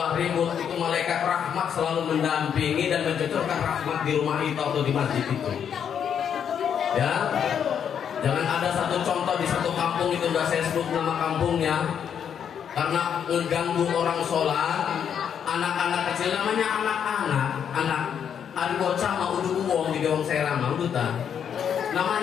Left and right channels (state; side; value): quieter; right; 8.2 dB